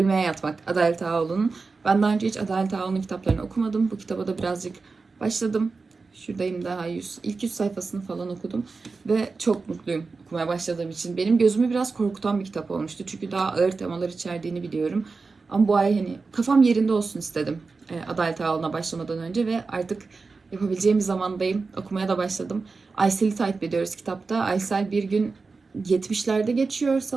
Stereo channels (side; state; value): left; quieter; 4.2 dB